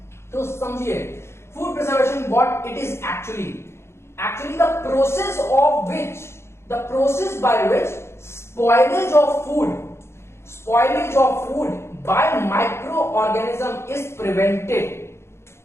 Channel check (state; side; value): late; right; 0.13 ms